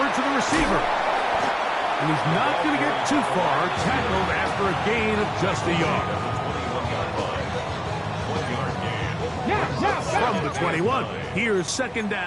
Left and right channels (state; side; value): identical; both; correlation 1.00